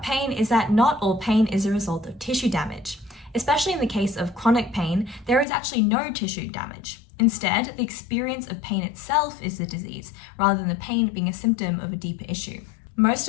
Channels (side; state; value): right; drops out; at 5.5 s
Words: pain is that not all pain is a result of tissue damage. Especially in the case of chronic pain, there is actually no tissue damage. Instead, the experience of pain itself is the disease, rather than the pain being a symptom of a deeper issue. Most